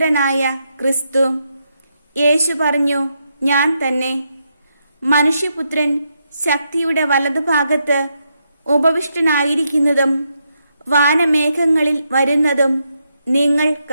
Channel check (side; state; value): both; inverted; correlation -0.81